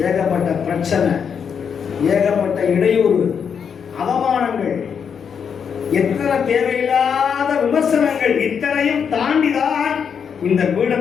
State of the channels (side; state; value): right; quieter; 7.0 dB